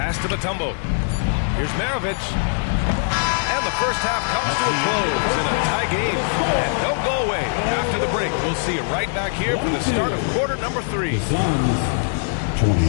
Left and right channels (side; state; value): right; silent; digital silence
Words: to Mutombo. Here's Maravich. And the first half comes to a close in a tie game. And don't go away. After the break, we'll see you right back here for the start of quarter number 3. Suns